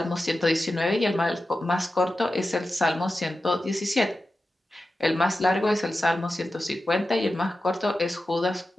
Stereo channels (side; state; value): both; normal; correlation 0.93